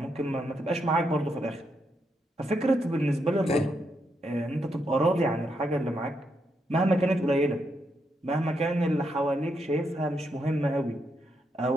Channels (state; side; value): normal; both; correlation 0.80